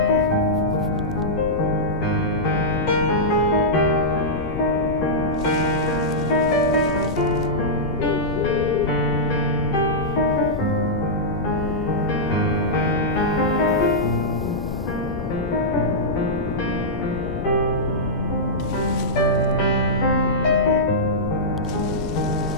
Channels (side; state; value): right; noise; hum, 25 dB below the sound